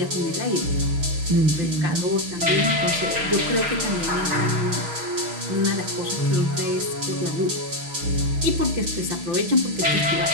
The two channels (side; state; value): left; late; 6.4 ms